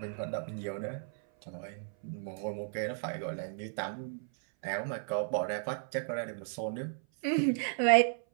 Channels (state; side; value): silent; left; 55 dB below the other